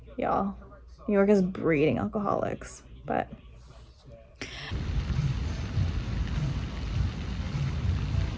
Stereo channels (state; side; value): identical; both; correlation 1.00